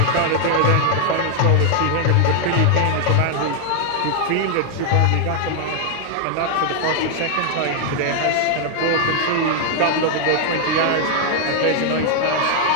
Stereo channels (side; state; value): both; different; correlation 0.00